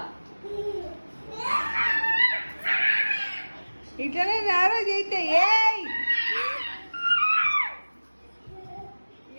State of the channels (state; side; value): inverted; both; correlation -1.00